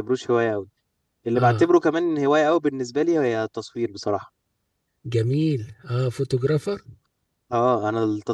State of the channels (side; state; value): both; identical; correlation 1.00